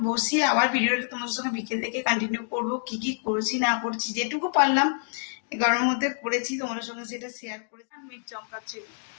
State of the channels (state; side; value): silent; right; digital silence